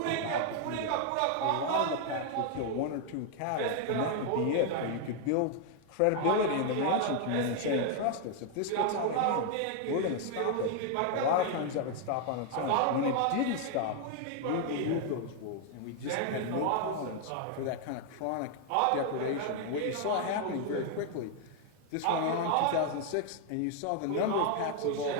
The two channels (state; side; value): different; both; correlation 0.00